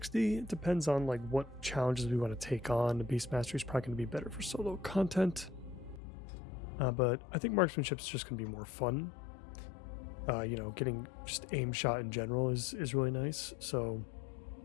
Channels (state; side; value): drops out; right; at 6.0 s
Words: It depends on like what challenges we want to take on. The beast mastery is probably going to be better for solo content. But I think marksmanship is just going to be more fun. You know, getting just aim shot in general is really nice. So